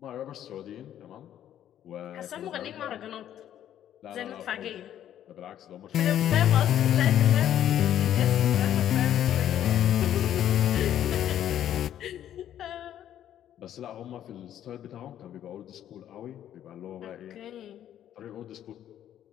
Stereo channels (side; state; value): right; quieter; 11.0 dB